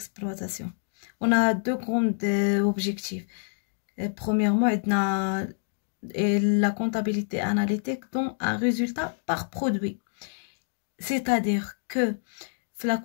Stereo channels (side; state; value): right; silent; digital silence